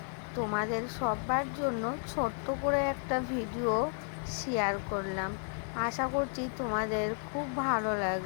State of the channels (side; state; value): right; silent; 56 dB below the other